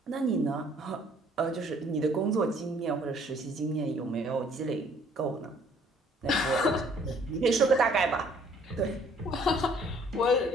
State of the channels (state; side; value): normal; both; correlation 0.59